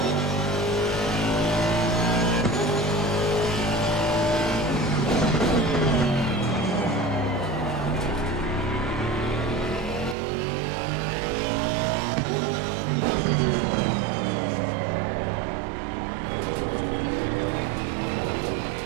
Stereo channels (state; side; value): drops out; left; at 10.2 s